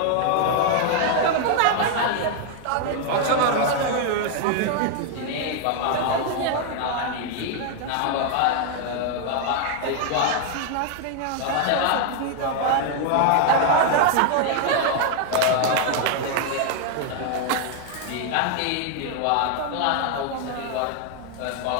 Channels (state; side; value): different; both; correlation 0.00